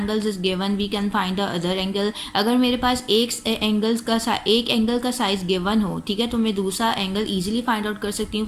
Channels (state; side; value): identical; both; correlation 1.00